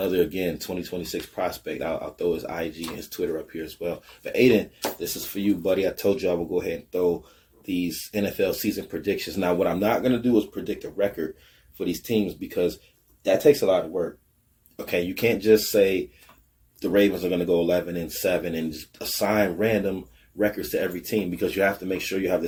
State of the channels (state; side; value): identical; both; correlation 1.00